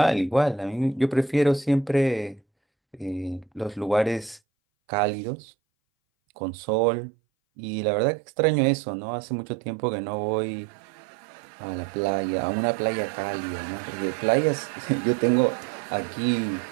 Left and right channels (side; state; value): left; drops out; at 4.4 s